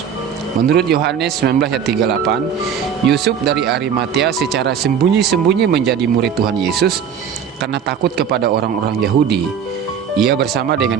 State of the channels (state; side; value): quieter; left; 7.7 dB